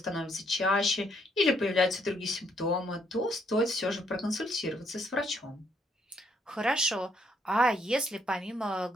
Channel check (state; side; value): normal; both; correlation 0.71